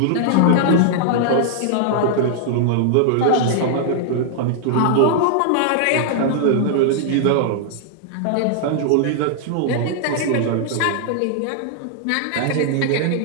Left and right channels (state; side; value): different; both; correlation -0.01